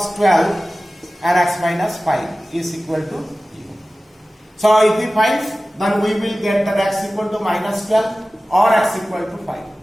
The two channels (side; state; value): both; normal; correlation 0.97